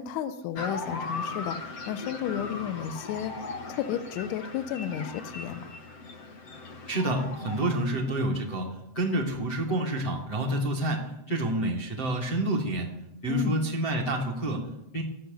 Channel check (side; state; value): right; late; 7.8 ms